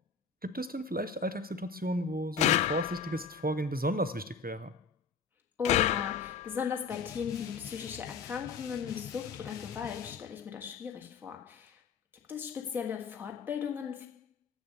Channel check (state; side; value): quieter; right; 5.2 dB